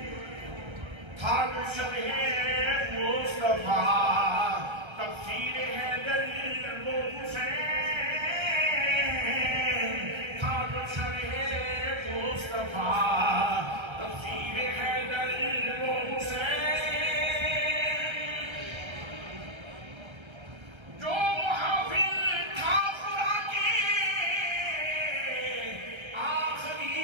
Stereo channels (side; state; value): left; late; 1.3 ms